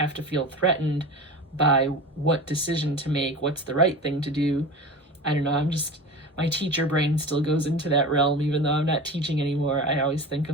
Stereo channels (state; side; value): normal; both; correlation 0.31